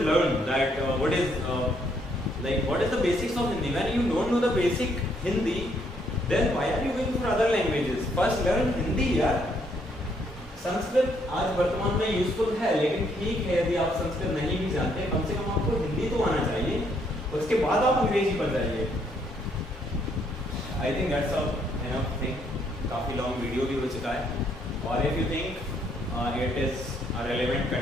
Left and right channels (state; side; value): normal; both; correlation 0.71